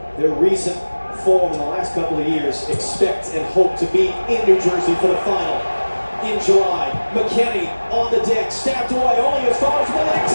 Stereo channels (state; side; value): inverted; both; correlation -1.00